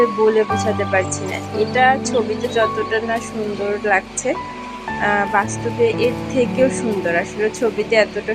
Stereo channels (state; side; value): identical; both; correlation 1.00